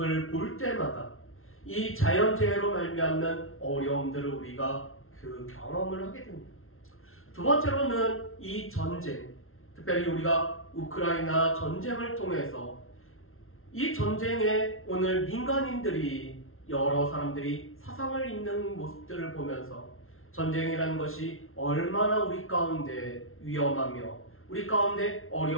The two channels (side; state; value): right; late; 0.61 ms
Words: 볼 때마다 이 자연재해로 말미암는 어려움들을 우리가 경험을 하게 됩니다. 두 번째로는 이 전쟁, 특별히 우리가 우크라이나 전쟁을 통해서 이 전쟁에 오늘 민간인들이 여러 사람들이 사상을 입는 모습들을 보면서 전쟁이라는 것이 얼마나 우리 가운데 위험하며 우리 가운데